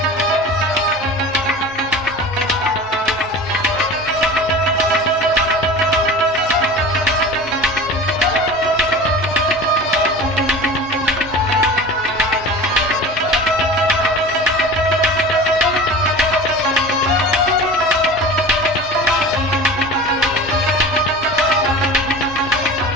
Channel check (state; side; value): normal; both; correlation 0.36